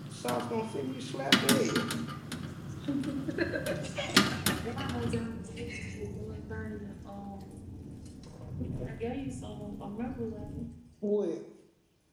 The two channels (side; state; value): both; identical; correlation 1.00